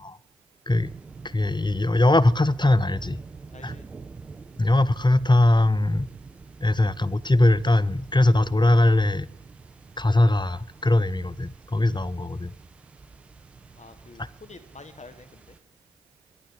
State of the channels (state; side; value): normal; both; correlation 0.92